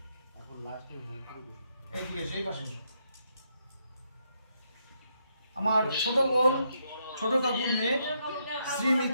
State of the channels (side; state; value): both; inverted; correlation -0.77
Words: এই পাশে এসো। আমার ছোট বোন, ছোট কাকুর মেয়ে শ্রী